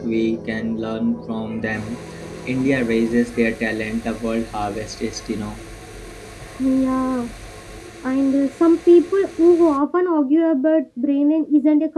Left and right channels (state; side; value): identical; both; correlation 1.00